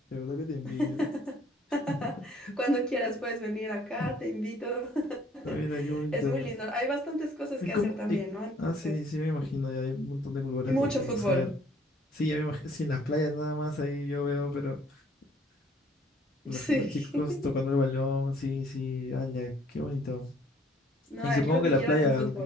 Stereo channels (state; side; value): normal; both; correlation 0.59